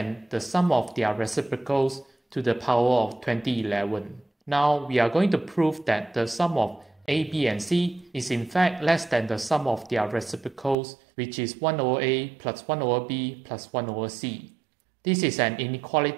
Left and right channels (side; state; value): left; drops out; at 10.8 s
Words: the sum of their reciprocals to the power of 2011. Now we are going to prove that the sum of a, b, and c is in fact less than the sum of their reciprocals, which is 1 over a plus 1 over b plus 1 over c. This is an